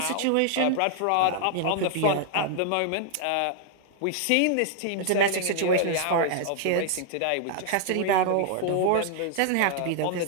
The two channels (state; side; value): different; both; correlation 0.00